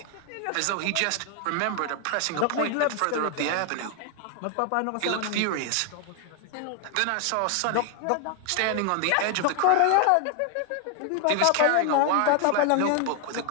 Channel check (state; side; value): different; both; correlation 0.01